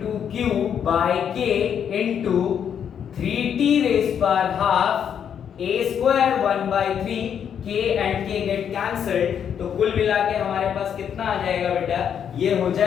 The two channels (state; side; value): quieter; right; 8.3 dB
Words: q by k into 3t raise power half a square 1/3, k and k get cancelled. तो कुल मिला के हमारे पास कितना आ जाएगा बेटा, ये हो